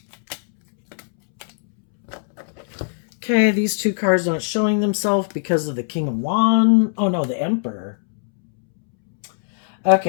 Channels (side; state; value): right; silent; 66 dB below the other